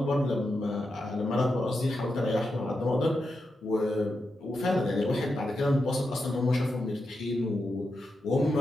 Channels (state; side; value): normal; both; correlation 0.87